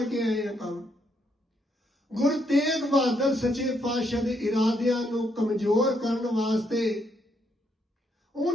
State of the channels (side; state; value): both; normal; correlation 0.75